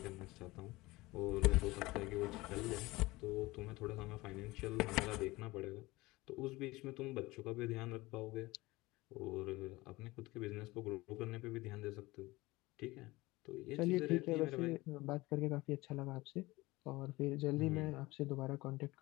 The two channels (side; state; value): right; quieter; 20.7 dB